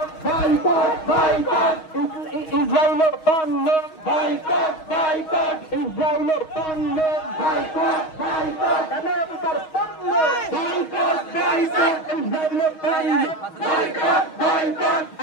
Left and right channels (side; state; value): right; late; 6.3 ms